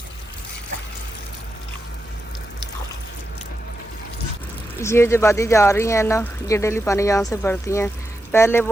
ये जो वादी जा रही है ना, ये डेली पानी यहाँ से भरती हैं। पहले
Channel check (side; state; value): both; normal; correlation 0.88